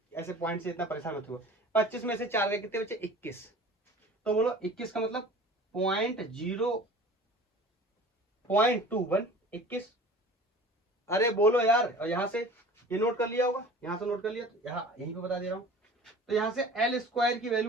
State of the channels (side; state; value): both; normal; correlation 0.42